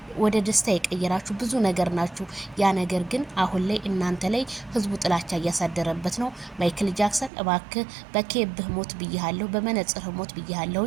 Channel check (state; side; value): drops out; left; at 7.3 s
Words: ወደ ደስታ የቀየራችሁ ብዙ ነገር ናችሁ። ያ ነገር ግን አሁን ላይ እናንተ ላይ ህዝቡ ጥላቻ እያሳደረበት ነው። ማይክል ጃክሰን እባክህ በኬብህ ሞት ብያለሁ፣ በመነጽርህ ሞት